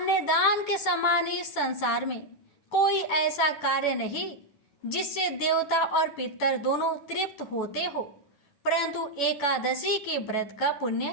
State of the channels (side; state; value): right; late; 9.2 ms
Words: दान के समान इस संसार में कोई ऐसा कार्य नहीं जिससे देवता और पितर दोनों तृप्त होते हो। परंतु एकादशी के व्रत का